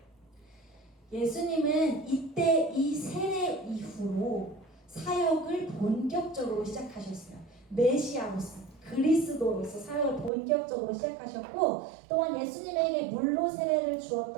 예수님은 이때 이 세례 이후로 사역을 본격적으로 시작하셨어요. 메시아로서 그리스도로서 사역을 본격적으로 시작하셨고 또한 예수님에게 물로 세례를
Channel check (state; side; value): drops out; left; at 10.3 s